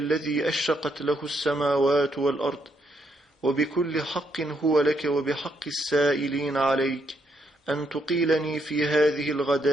أشرقت له السماوات والأرض، وبكل حق هو لك وبحق السائلين عليك، أن تقيلني في هذه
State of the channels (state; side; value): normal; both; correlation 0.76